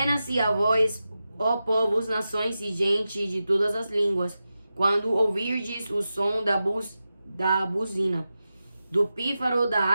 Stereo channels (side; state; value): both; inverted; correlation -0.92